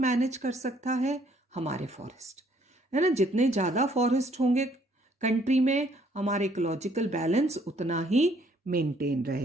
मैनेज कर सकता है, हमारे फॉरेस्ट, है ना। जितने ज़्यादा फॉरेस्ट होंगे कंट्री में, हमारे इकोलॉजिकल बैलेंस उतना ही मेंटेन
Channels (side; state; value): both; normal; correlation 0.64